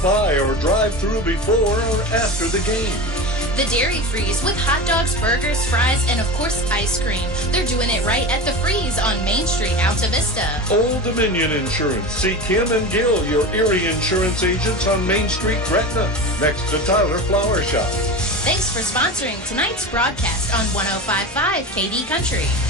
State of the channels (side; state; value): both; normal; correlation 0.27